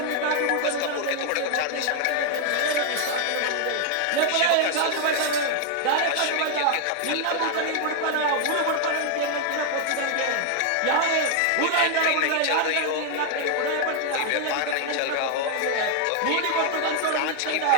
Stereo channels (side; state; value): both; different; correlation 0.00